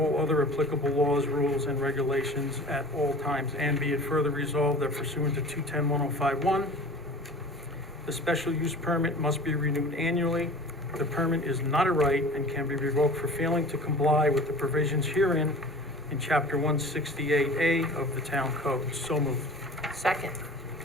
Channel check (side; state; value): both; normal; correlation 0.41